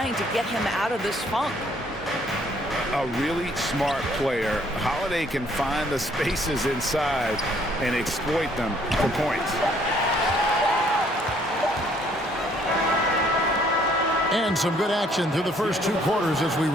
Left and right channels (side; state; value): both; normal; correlation 0.63